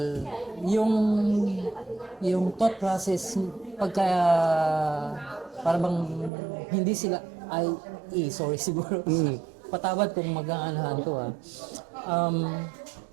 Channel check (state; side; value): drops out; left; at 6.3 s